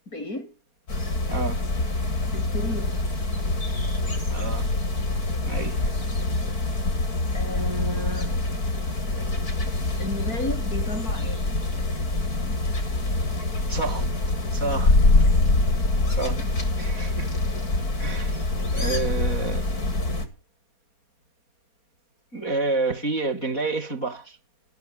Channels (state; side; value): late; right; 4.5 ms